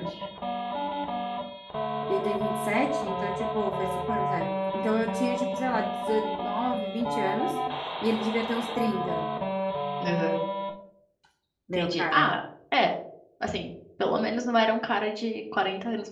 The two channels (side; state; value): both; identical; correlation 1.00